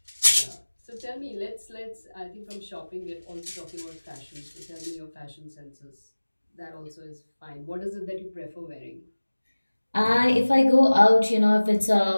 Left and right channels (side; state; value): both; inverted; correlation -1.00